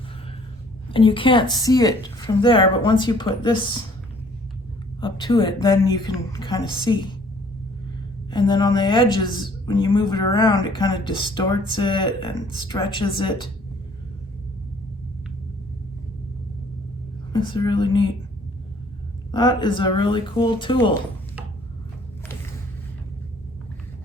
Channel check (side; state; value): both; normal; correlation 0.58